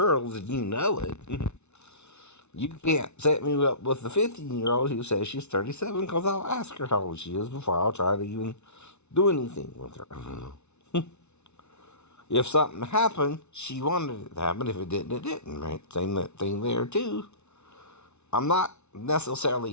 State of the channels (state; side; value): late; right; 0.82 ms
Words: and you know it, you can't set me up with the 15-year-old who says she's 37 because I'll ask her how old she is before I'll try to even do anything with her. If something happened, she wanted it to happen. If it didn't, it didn't, right? Same thing there, too. I'm not